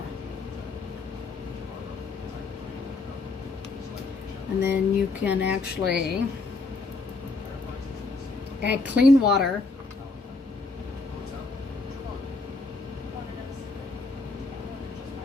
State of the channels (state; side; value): quieter; right; 3.7 dB